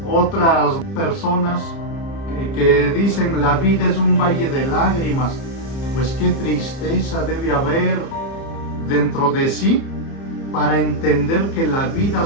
Otras personas que dicen la vida es un valle de lágrimas, pues qué tristeza debe haber dentro de sí para entender que la vida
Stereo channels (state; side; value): late; right; 30 ms